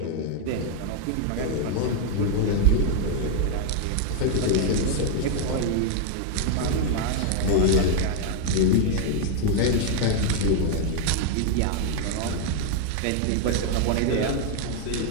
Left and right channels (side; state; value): both; different; correlation 0.00